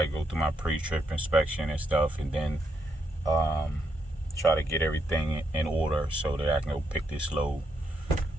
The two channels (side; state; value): both; normal; correlation 0.78